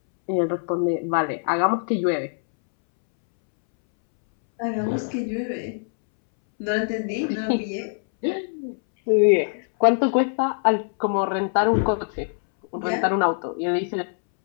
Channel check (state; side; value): silent; right; 63 dB below the other